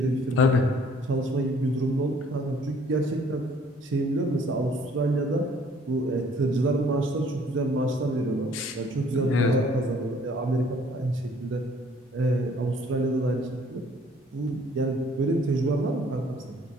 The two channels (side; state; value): both; normal; correlation 0.58